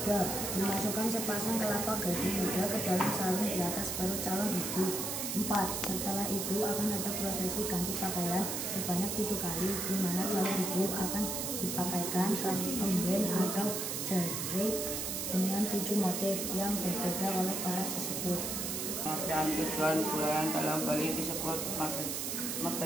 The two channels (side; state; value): right; noise; hiss, 2 dB below the sound